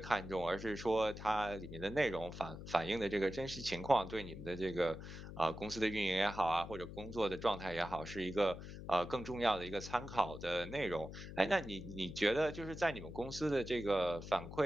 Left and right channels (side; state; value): left; noise; hum, 11 dB below the sound